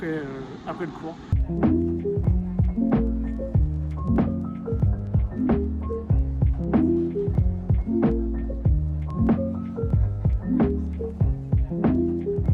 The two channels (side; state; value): both; identical; correlation 1.00